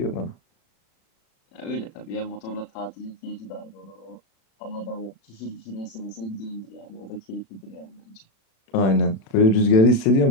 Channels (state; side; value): late; right; 36 ms